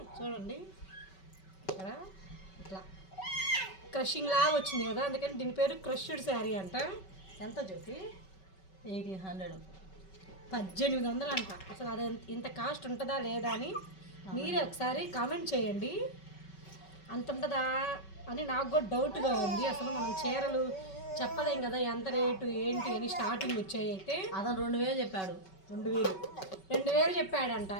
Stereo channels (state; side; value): late; right; 5.3 ms